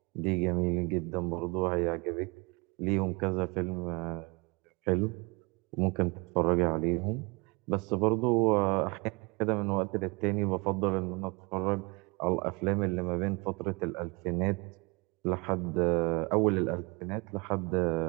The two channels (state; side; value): quieter; left; 28.5 dB